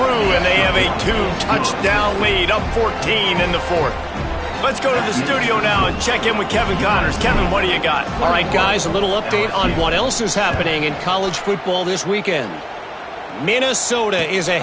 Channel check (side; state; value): both; identical; correlation 1.00